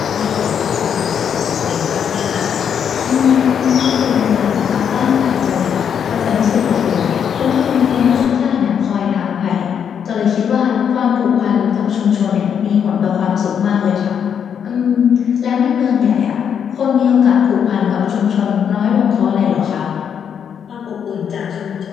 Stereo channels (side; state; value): right; quieter; 7.9 dB